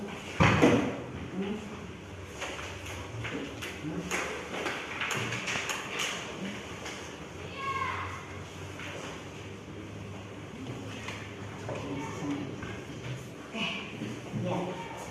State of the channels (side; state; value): both; identical; correlation 1.00